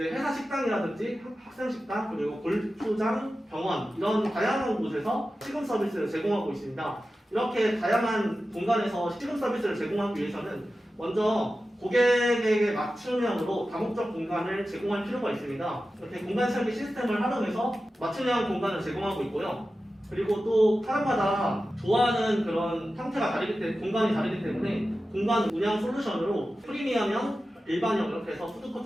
회사 식당이라든지 학생 식당 그리고 골프장, 병원 이런 다양한 곳에서 식음 서비스를 제공하고 있습니다. 이렇게 다양한 공간에서 식음 서비스를 제공하기 위해서는 먼저 고객에게 맞춤형으로 다목적 공간을 제공할 필요가 있습니다. 이렇게 공간 설계 시스템을 활용해서 맞춤형 공간을 제공하고 있고요. 그리고 또 사람마다 좋아하는 그런 형태가 다르기 때문에 공간이 다르기 때문에 공간 운영 솔루션으로 프리미엄형, 일반형 이렇게 해서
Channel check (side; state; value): both; normal; correlation 0.93